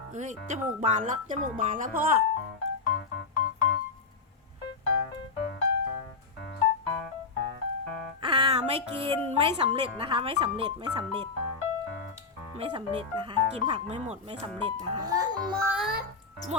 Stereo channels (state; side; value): quieter; right; 4.5 dB